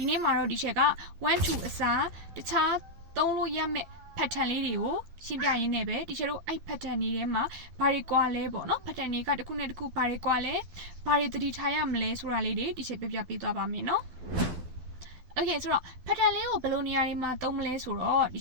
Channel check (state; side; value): late; left; 12 ms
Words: ီနေ့မှာတော့ဒီချက်က1 2အစားတခြားသုံးလို့ရမယ့် pattern လေးတွေကိုရှင်းပြရင်းနဲ့ပဲဒီချက်တို့အဲ့ pattern တွေထဲမှာဘာတွေကွာလဲပေါ့နော် pattern တွေကတစ်ခုနဲ့တစ်ခုဘာတွေကွာလဲဘာတွေသတိထားရမလဲဆိုတာလေးတွေဒီချက်ပြပြပေးသွားပါမယ်နော် Okay ဆိုတော့ pattern လေးကိုဘယ်လိုနေရာတွေမှာသုံးမလဲဆိုတော့ဒီ